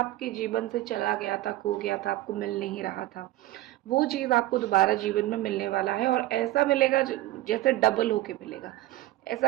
जीवन से चला गया था, खो गया था, आपको मिल नहीं रहा था, वो चीज आपको दोबारा जीवन में मिलने वाला है। और ऐसा मिलेगा जैसे डबल होके मिलेगा।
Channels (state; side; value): quieter; left; 16.2 dB